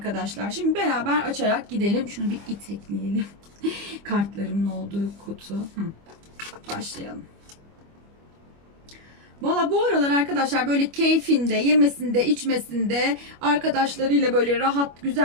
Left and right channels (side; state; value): left; late; 25 ms